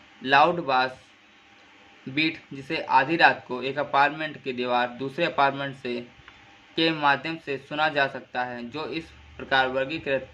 लाउड बास बीट जिसे आधी रात को एक अपार्टमेंट की दीवार दूसरे अपार्टमेंट से के माध्यम से सुना जा सकता है जो इस प्रकार वर्गीकृत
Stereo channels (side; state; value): both; identical; correlation 1.00